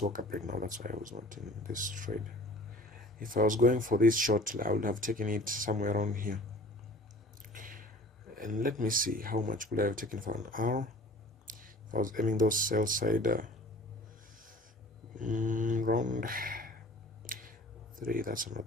woke up right now, that's why I was not in this trade. If I was going for this short, I would have taken it somewhere around here. And let me see, how much could I have taken for an hour? If I was aiming those sell side round 3, that's not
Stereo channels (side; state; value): both; normal; correlation 0.46